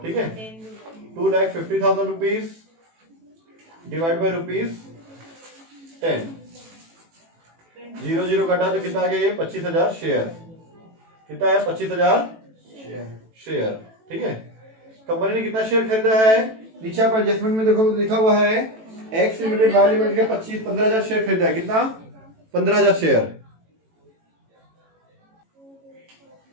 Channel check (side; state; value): left; late; 18 ms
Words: ठीक है। 2,50,000 रुपीज डिवाइड बाई ₹10, 0 कटा तो कितना आ गया? ये 25,000 शेयर। कितना है? 25,000 शेयर, ठीक है। कंपनी ने कितना शेयर खरीदा है? नीचे आप एडजस्टमेंट में देखो तो लिखा हुआ है एक्स लिमिटेड वाई लिमिटेड के 15,000 शेयर खरीदा है। कितना? 15,000 शेयर।